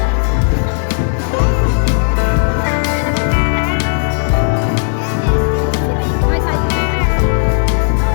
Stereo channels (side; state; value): right; silent; digital silence